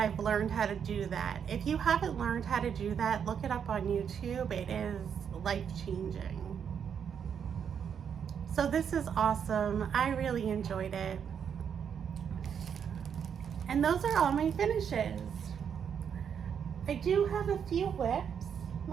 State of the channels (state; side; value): quieter; left; 7.6 dB